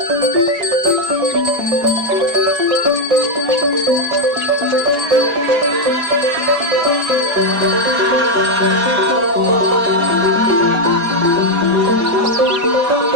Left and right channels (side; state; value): left; late; 4.9 ms